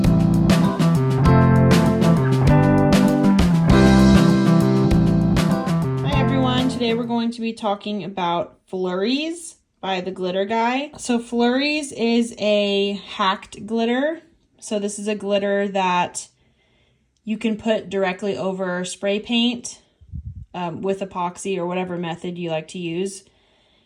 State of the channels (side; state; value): both; identical; correlation 1.00